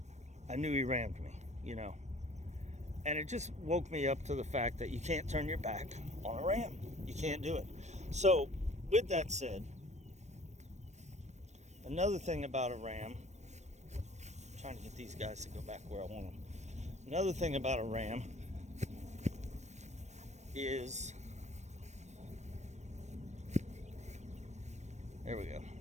knew he rammed me, you know. And it just woke me up to the fact that you can't turn your back on a ram. You can't do it. So with that said, another thing about a ram, I'm trying to get these guys to go back where I want them. Another thing about a ram is, there we go.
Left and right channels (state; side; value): late; left; 0.34 ms